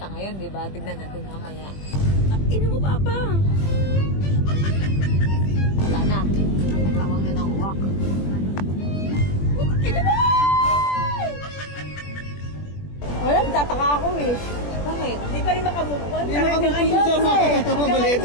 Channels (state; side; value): late; right; 21 ms